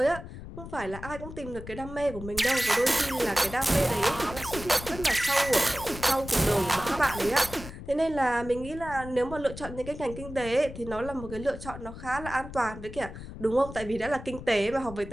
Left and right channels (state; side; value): noise; left; rumble, 12 dB below the sound